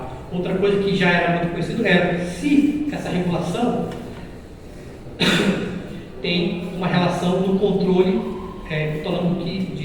Outra coisa que já era muito conhecido era se essa regulação tem uma relação no controle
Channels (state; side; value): identical; both; correlation 1.00